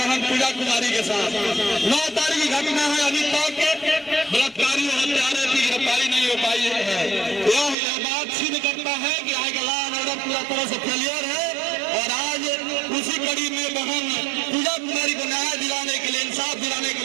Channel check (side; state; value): left; drops out; at 7.8 s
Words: पूजा कुमारी के साथ, 9 तारीख की घटना है, अभी तक बलात्कारी और हत्यारे की गिरफ्तारी नहीं हो पाई है। यह बात सिद्ध करता है कि आज लॉ एंड ऑर्डर पूरा तरह से फेलियर है। और आज उसी कड़ी में बहन पूजा कुमारी को न्याय दिलाने के लिए, इंसाफ दिलाने के